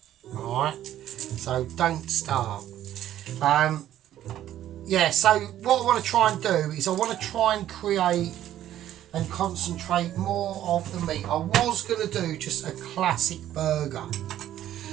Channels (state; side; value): quieter; left; 12.2 dB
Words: Alright? So don't start. Yeah, so what I want to try and do is I want to try and create and concentrate more of the meat. I was going to do just a classic burger.